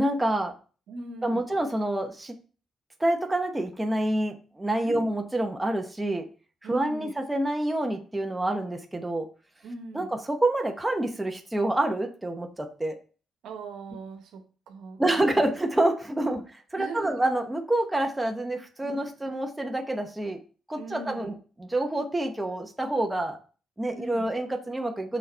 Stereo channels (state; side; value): normal; both; correlation 0.92